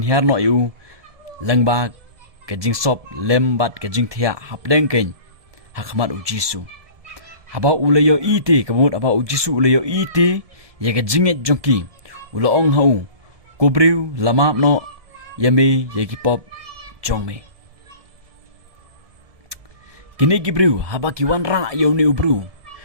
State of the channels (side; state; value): left; late; 1.7 ms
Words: no yu langba ka jing sop lem bat ka jing thia hapleng ken hakmat u jisu haba ulayo ite kamut aba u jisu ulayo ite ye ka jinget jongki ulo ong hau kubriu lama no yame ye ki pop jongme kini gibriu haba ki wan ra yo ni ubru